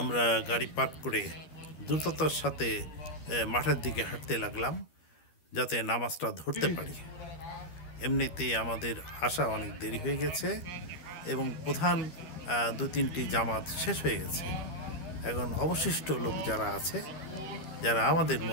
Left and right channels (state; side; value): late; right; 12 ms